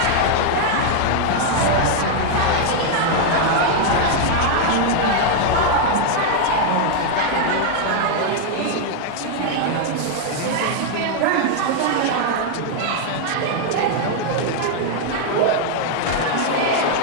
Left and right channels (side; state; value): both; different; correlation 0.00